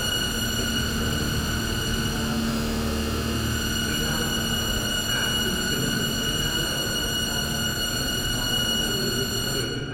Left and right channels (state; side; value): identical; both; correlation 1.00